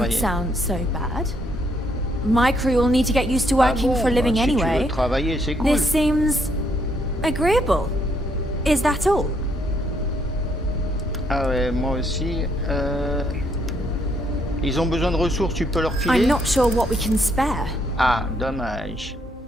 travailler. sound so bad. My crew will need to get used to working for a living si tu veux anyway. travailler, c'est cool. This seems agreeable. Is that all? Ah ouais, moi aussi. Ils ont besoin de ressources, tu peux leur filer. I'm not sure what we can spare. Ah, dommage.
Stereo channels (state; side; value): normal; both; correlation 0.72